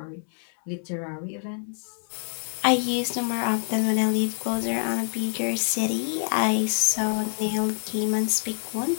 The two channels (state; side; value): silent; right; 61 dB below the other